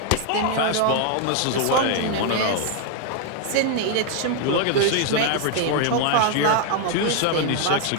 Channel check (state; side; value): different; both; correlation 0.00